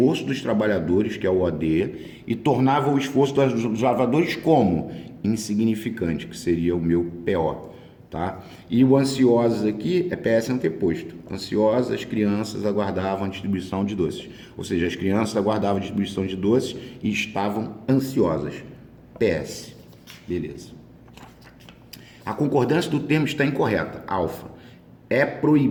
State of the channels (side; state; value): both; identical; correlation 1.00